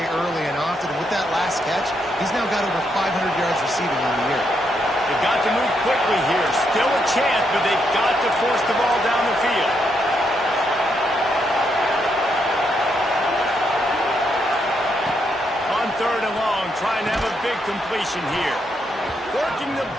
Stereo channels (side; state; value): both; normal; correlation 0.78